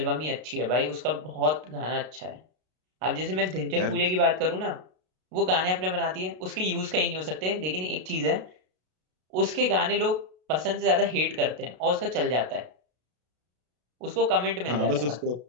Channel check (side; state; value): left; late; 33 ms